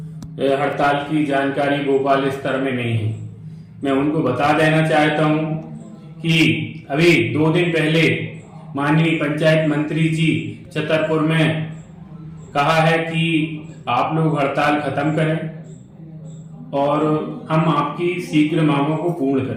हड़ताल की जानकारी भोपाल स्तर में नहीं है। मैं उनको बता देना चाहता हूं कि अभी 2 दिन पहले माननीय पंचायत मंत्री जी छतरपुर में कहा है कि आप लोग हड़ताल खत्म करें और हम आपकी शीघ्र मांगों को पूर्ण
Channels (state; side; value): identical; both; correlation 1.00